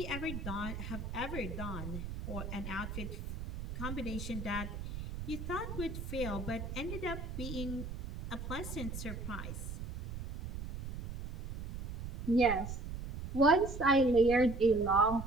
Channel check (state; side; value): noise; right; rumble, 7 dB below the sound